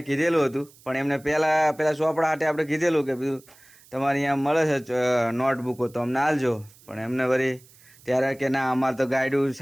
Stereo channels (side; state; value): right; noise; hiss, 26 dB below the sound